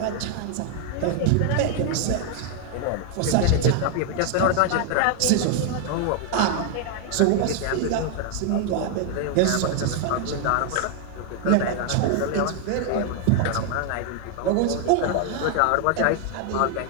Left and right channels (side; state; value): both; different; correlation 0.00